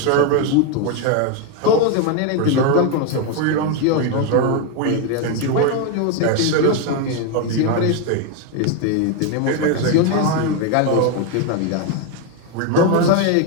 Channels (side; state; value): both; different; correlation 0.01